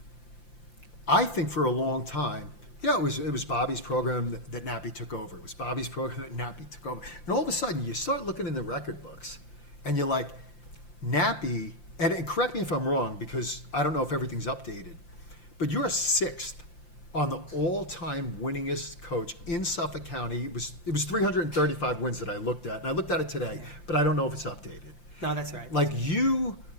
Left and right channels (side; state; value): right; late; 5.8 ms